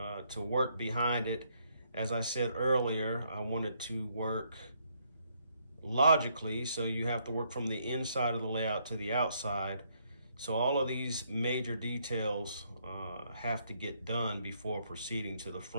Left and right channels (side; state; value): both; inverted; correlation -0.72